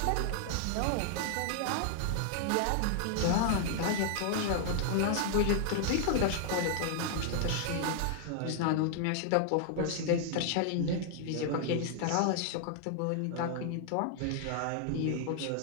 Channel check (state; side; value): different; both; correlation 0.00